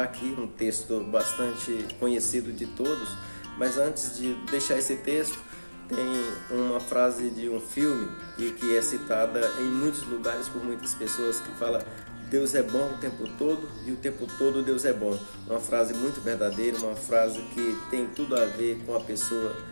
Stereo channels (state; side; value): inverted; both; correlation -1.00